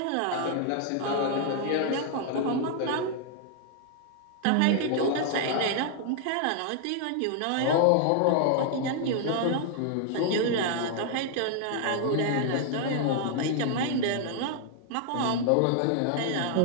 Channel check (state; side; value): different; both; correlation 0.00